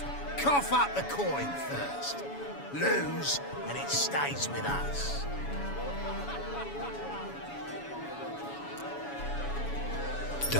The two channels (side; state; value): right; late; 7.1 ms